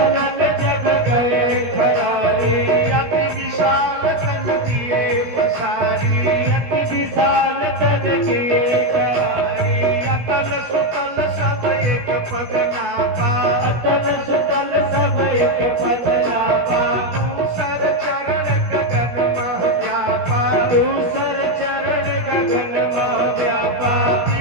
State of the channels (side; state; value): left; late; 17 ms